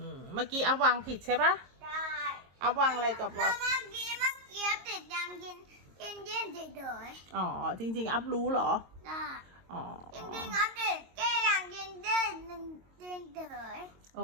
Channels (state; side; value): late; left; 22 ms